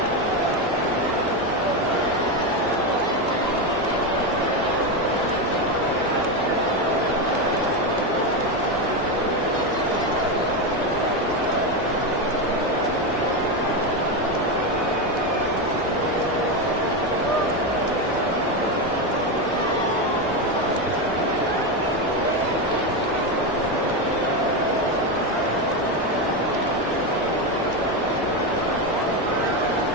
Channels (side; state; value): both; normal; correlation 0.12